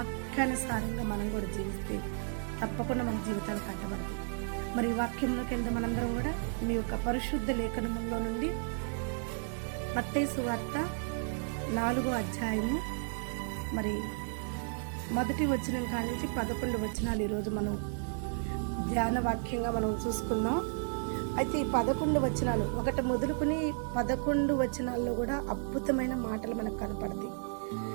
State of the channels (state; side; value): silent; left; 55 dB below the other